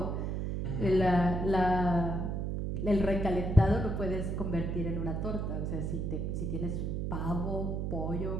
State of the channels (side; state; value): right; noise; hum, 1 dB below the sound